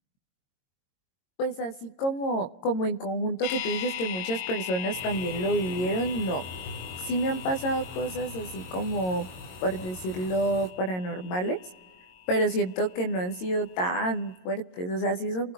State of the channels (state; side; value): late; right; 22 ms